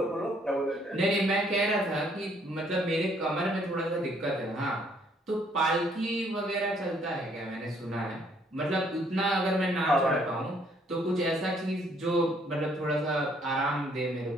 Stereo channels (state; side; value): normal; both; correlation 0.65